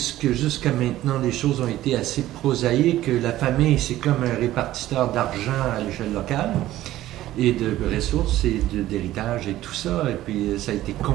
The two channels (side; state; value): left; quieter; 14.7 dB